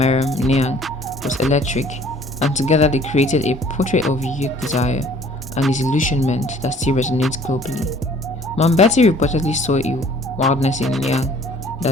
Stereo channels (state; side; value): normal; both; correlation 0.54